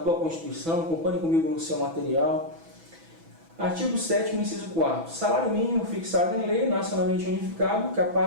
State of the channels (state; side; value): late; left; 6.1 ms